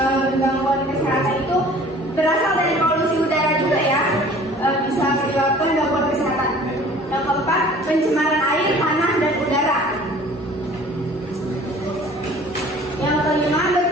Gangguan kesehatan itu berasal dari polusi udara juga ya, bisa menyebabkan gangguan kesehatan. Yang keempat, pencemaran air, tanah, dan udara. Yang kelima,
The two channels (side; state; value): both; normal; correlation 0.49